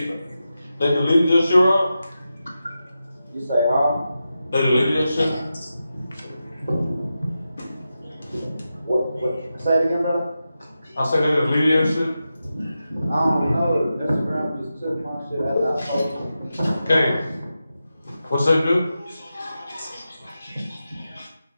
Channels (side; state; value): both; inverted; correlation -0.90